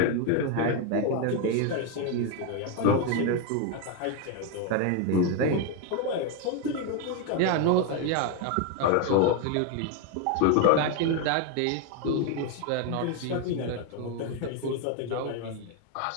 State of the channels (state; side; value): different; both; correlation 0.01